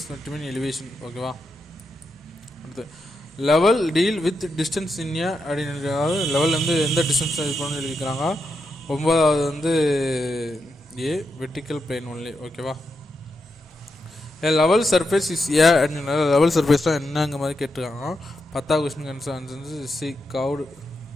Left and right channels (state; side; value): normal; both; correlation 0.85